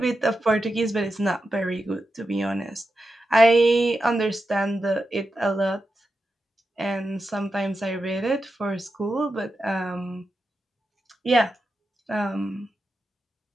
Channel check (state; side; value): normal; both; correlation 0.89